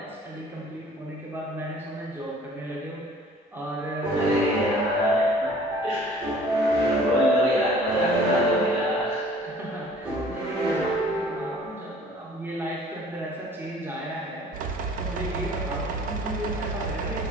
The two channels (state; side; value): normal; both; correlation 0.52